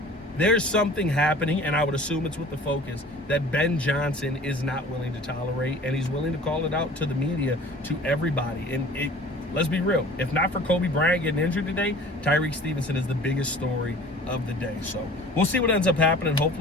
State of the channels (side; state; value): both; normal; correlation 0.45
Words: There's something happening, and I would assume it's with the focus, that Ben Johnson is not willing to tolerate, and he's willing to call it out to the media, to everybody. And let's be real, if not for Coby Bryant getting injured today, Tyrique Stevenson is the biggest story of the day. So we'll see what ends up happening.